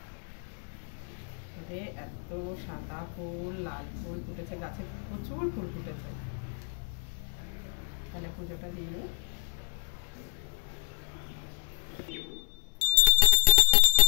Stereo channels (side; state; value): right; silent; 58 dB below the other